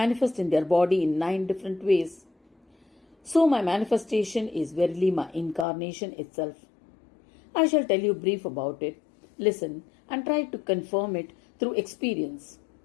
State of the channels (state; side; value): drops out; right; at 5.7 s